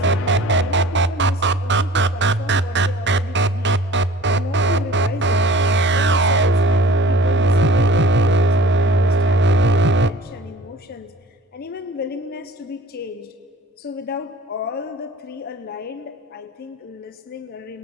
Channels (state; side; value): normal; both; correlation 0.47